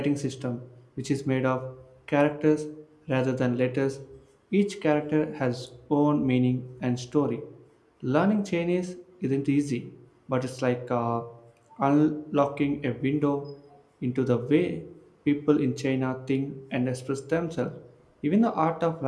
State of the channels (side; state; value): both; identical; correlation 1.00